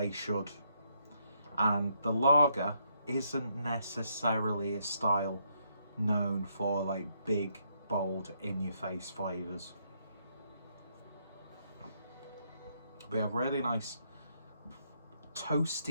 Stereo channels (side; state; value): both; inverted; correlation -0.74